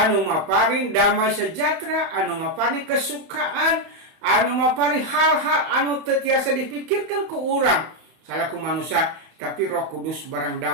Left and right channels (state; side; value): late; left; 31 ms